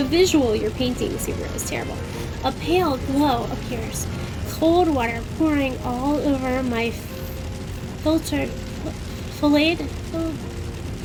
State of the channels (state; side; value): identical; both; correlation 1.00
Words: visual you're painting, Subaru, is terrible. A pale glow appears. Cold water pouring all over my